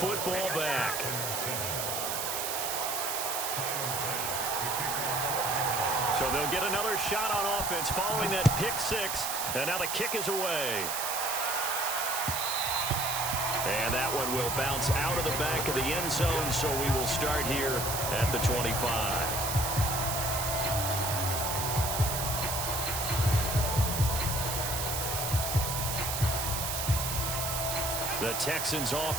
back. So they'll get another shot on offense following that pick 6. And now the kick is away. And that one will bounce out of the back of the end zone, so we will start here at the 25. The Texans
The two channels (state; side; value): noise; right; hiss, 2 dB below the sound